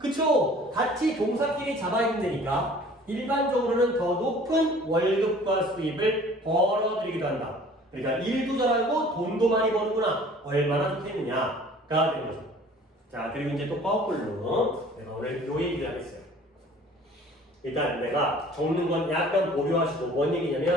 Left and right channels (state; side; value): normal; both; correlation 0.50